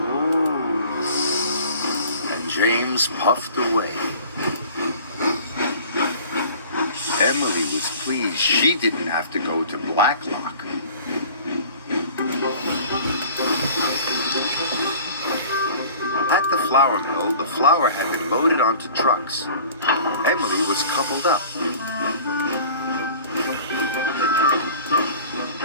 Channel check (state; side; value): inverted; both; correlation -0.45